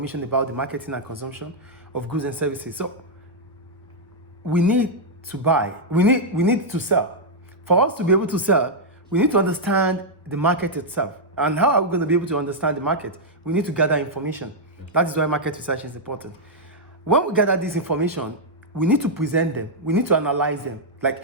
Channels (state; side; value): normal; both; correlation -0.05